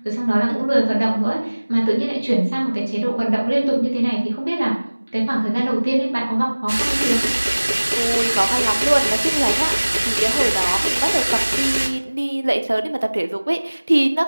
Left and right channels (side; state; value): both; inverted; correlation -1.00